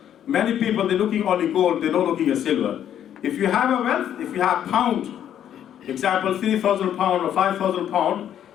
Many people, they're looking only gold, they're not looking at silver. If you have a wealth, if you have pound, example 3,000 pound or 5,000 pound,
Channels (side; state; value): right; quieter; 10.2 dB